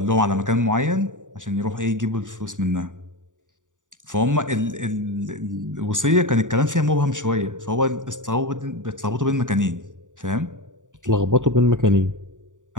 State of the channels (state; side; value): late; left; 0.87 ms